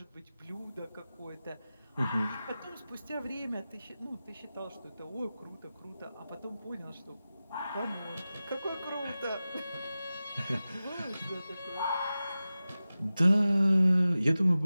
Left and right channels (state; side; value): inverted; both; correlation -0.95